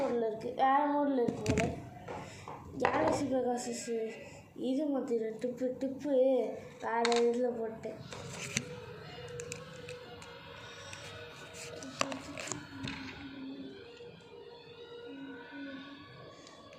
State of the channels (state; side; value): identical; both; correlation 1.00